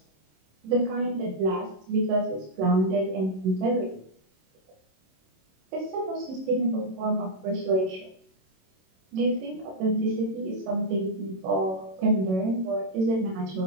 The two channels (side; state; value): left; late; 27 ms